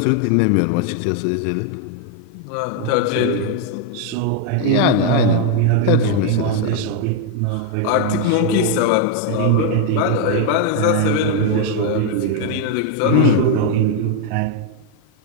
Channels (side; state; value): both; different; correlation 0.00